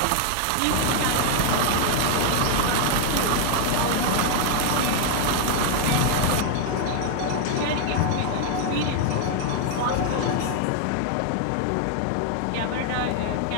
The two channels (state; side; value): different; both; correlation 0.00